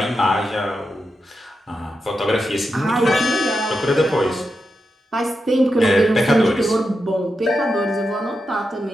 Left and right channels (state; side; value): normal; both; correlation 0.88